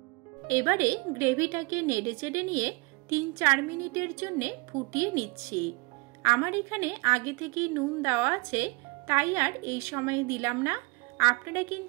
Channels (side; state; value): left; quieter; 26.8 dB